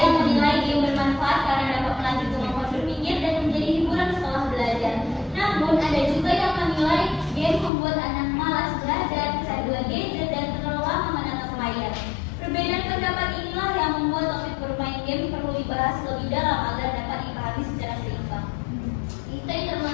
menilai game bermanfaat karena dapat melatih kemampuan berpikir dan menjadi hiburan setelah belajar. Namun ada juga yang menilai game membuat anak malas belajar, kecanduan gadget dan terlalu lama menatap layar. Perbedaan pendapat inilah yang membuat topik bermain game perlu dibahas lebih dalam agar dapat dipahami secara seimbang. Itu yang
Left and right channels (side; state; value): right; drops out; at 7.7 s